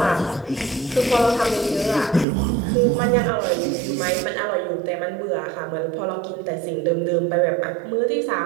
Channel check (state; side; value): drops out; left; at 2.2 s